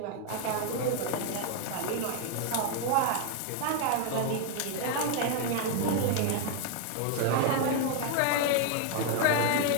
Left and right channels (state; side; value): different; both; correlation 0.00